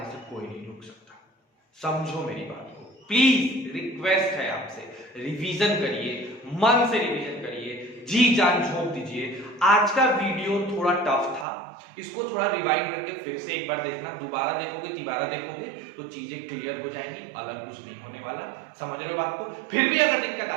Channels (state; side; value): drops out; left; at 11.5 s